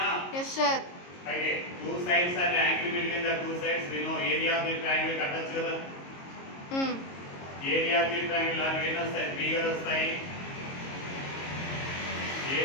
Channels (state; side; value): late; right; 22 ms